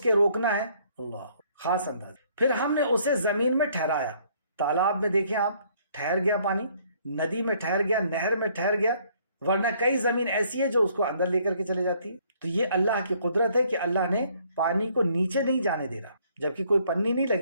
روکنا ہے, اللہ خاص اندازہ. پھر ہم نے اسے زمین میں ٹھہرایا. تالاب میں دیکھیں آپ, ٹھہر گیا پانی, ندی میں ٹھہر گیا, نہر میں ٹھہر گیا, ورنہ کئی زمین ایسی ہے جو اس کو اندر لے کر کے چلے جاتی ہے. تو یہ اللہ کی قدرت ہے کہ اللہ نے پانی کو نیچے نہیں جانے دے رہا, جبکہ کوئی پنی نہیں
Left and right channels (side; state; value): both; inverted; correlation -0.64